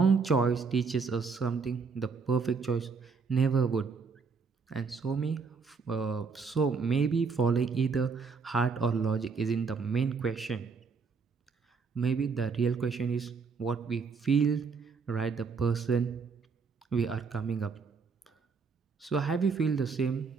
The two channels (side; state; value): left; quieter; 5.1 dB